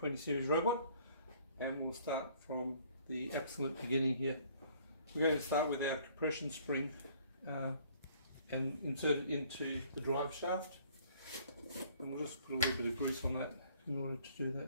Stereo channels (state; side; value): inverted; both; correlation -0.58